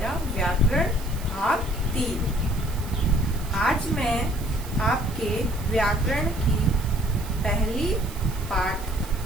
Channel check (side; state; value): right; noise; hiss, 16 dB below the sound